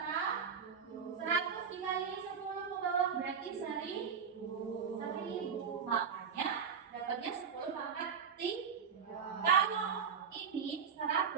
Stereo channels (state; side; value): quieter; left; 6.8 dB